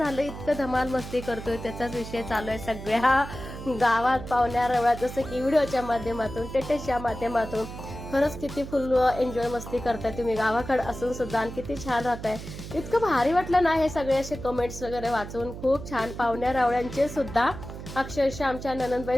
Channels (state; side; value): noise; right; hum, 11 dB below the sound